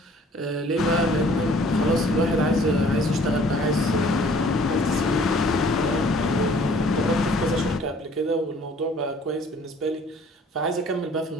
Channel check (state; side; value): normal; both; correlation 0.55